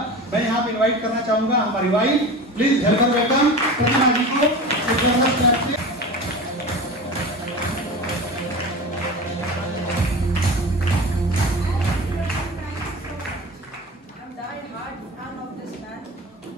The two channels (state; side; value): normal; both; correlation 0.32